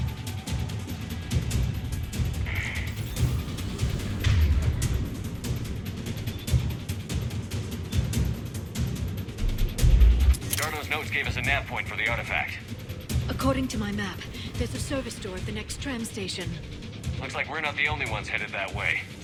Darno's notes gave us a nav point for the artifact. According to my map, there's a service door at the next tram station. Looks like we're not the only ones headed that way.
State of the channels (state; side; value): identical; both; correlation 1.00